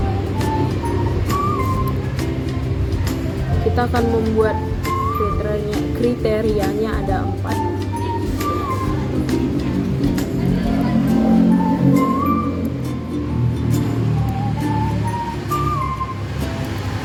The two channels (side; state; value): both; identical; correlation 1.00